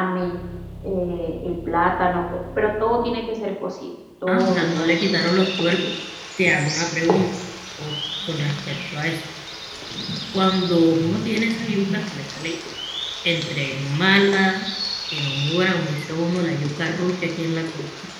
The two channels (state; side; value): identical; both; correlation 1.00